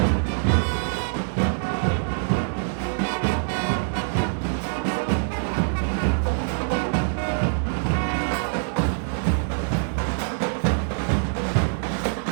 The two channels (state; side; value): silent; left; digital silence